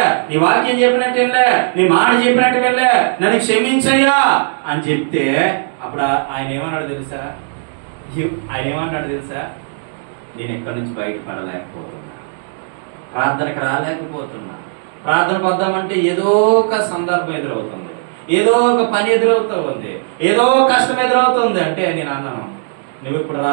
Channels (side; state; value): left; silent; digital silence